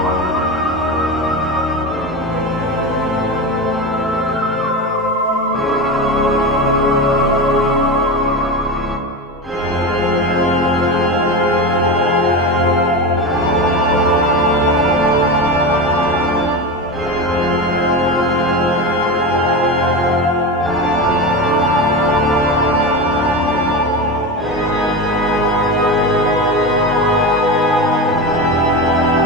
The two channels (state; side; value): normal; both; correlation 0.22